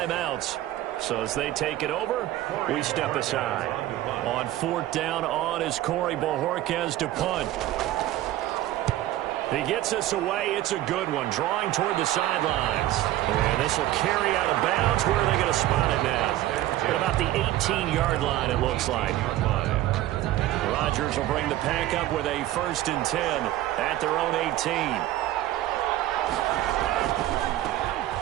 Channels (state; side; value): quieter; left; 14.6 dB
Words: So as they take it over, we step aside. On 4th down, on is Corey Bojorquez to punt. He gets us away. It's a good one. Drawing toward the sidelines. And this will carry out of bounds. Where are they going to spot it now? At about the 18-yard line, it looks like. Rodgers will bring the pack up with a 1st and 10 at their own 18.